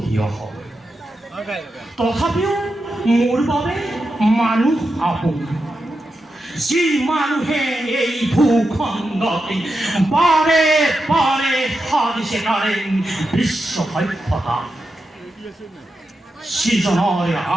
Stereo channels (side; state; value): both; normal; correlation 0.88